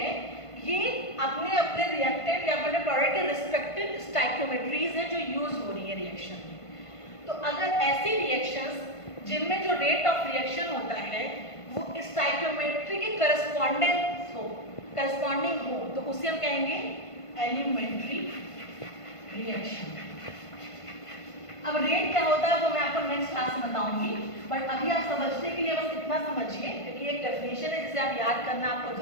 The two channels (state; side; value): late; right; 1.5 ms